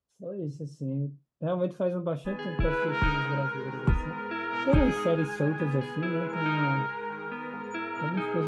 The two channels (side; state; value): both; identical; correlation 1.00